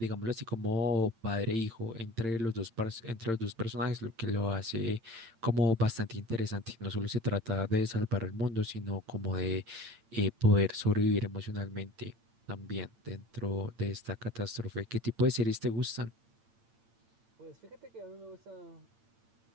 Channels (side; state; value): left; late; 8.8 ms